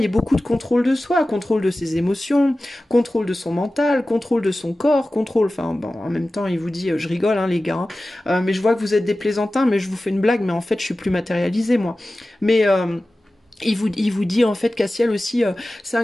et beaucoup de contrôle de soi, contrôle de ses émotions, contrôle de son mental, contrôle de son corps, contrôle, enfin, bon, en même temps, il vous dit, je rigole, hein, les gars, hein, mais je vois que vous êtes des plaisantins, mais je vous fais une blague, mais en fait, je suis plus matérialisée, moi. Mais il vous dit en fait, Cassiel aussi, c'est un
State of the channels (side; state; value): both; normal; correlation 0.96